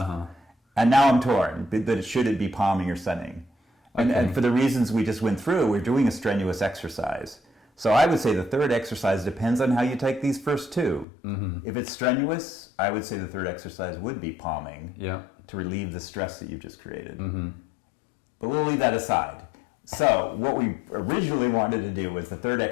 And now I'm torn, that should it be palming or sunning? And for the reasons we just went through, we're doing a strenuous exercise. So I would say the third exercise depends on how you take these first two. If it's strenuous, I would say the third exercise would be palming to relieve the stress that you've just created. But we'll leave that aside. So what we originally wanted to do was the third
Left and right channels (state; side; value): drops out; right; at 11.1 s